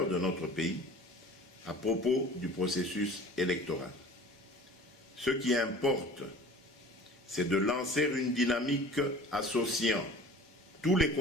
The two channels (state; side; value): normal; both; correlation 0.43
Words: de notre pays, à propos du processus électoral. Ce qui importe, c'est de lancer une dynamique associant tous les